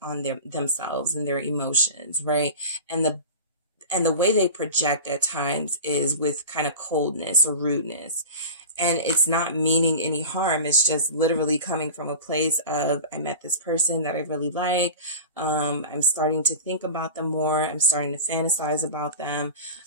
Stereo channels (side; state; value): both; inverted; correlation -0.33